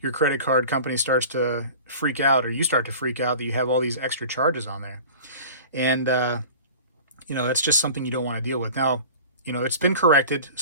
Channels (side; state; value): both; inverted; correlation -0.40